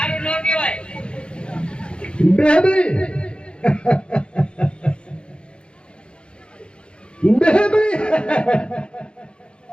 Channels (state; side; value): late; right; 0.055 ms